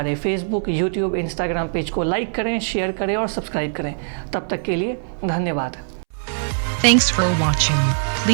फेसबुक, यूट्यूब, इंस्टाग्राम पेज को लाइक करें, शेयर करें और सब्सक्राइब करें। तब तक के लिए धन्यवाद। Thanks for watching.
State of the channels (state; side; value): silent; left; 65 dB below the other